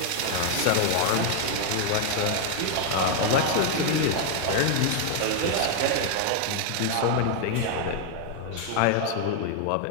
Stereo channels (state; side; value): different; both; correlation 0.00